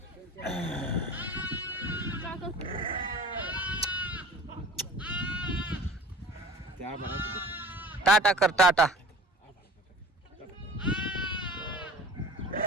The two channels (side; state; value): both; normal; correlation 0.42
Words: टाटा कर टाटा.